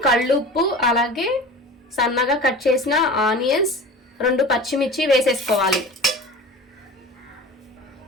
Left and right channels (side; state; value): both; normal; correlation 0.37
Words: కళ్ళుప్పు, అలాగే సన్నగా కట్ చేసిన ఆనియన్స్, 2 పచ్చిమిర్చి వేసేసుకోవాలి.